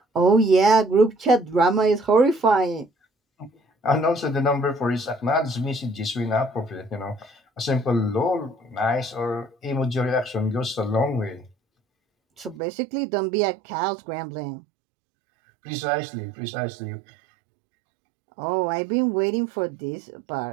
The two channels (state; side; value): drops out; left; at 12.6 s